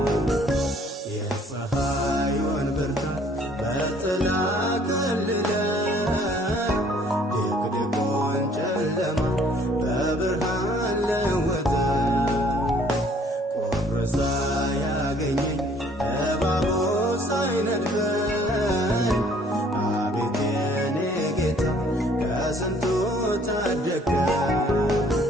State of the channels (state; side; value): normal; both; correlation 0.59